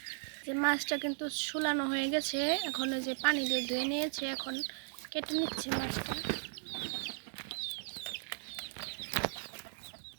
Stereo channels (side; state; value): left; silent; digital silence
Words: যে মাছটা কিন্তু ছুলানো হয়ে গেছে, এখন ওই যে পানি দিয়ে ধুয়ে নিয়েছে, এখন কেটে নিচ্ছে মাছটা।